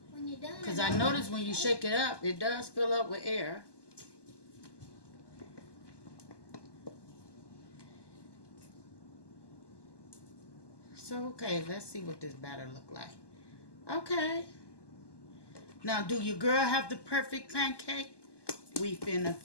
When you're done. Because I noticed when you shake it up, it does fill up with air. So, okay, let's see what this batter look like. Okay. Now, do your girl have the perfect pancake? We finna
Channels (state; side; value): late; right; 1.2 ms